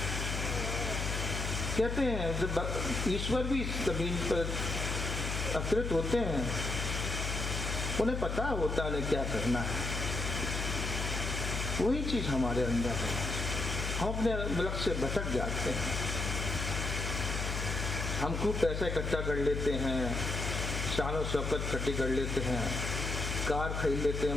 कहते हैं जब ईश्वर भी इस जमीन पर अवतरित होते हैं, उन्हें पता होता है उन्हें क्या करना है। वही चीज हमारे अंदर है, हम अपने लक्ष्य से भटक जाते हैं। हम खूब पैसा इकट्ठा कर लेते हैं, शान और शौकत इकट्ठी कर लेते हैं, कार खरीद लेते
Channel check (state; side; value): noise; left; hum, 2 dB below the sound